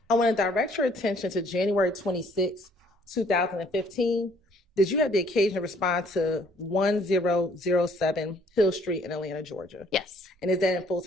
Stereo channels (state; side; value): normal; both; correlation 0.61